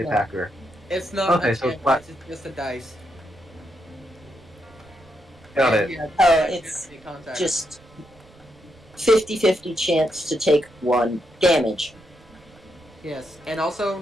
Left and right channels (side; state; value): right; noise; rumble, 26 dB below the sound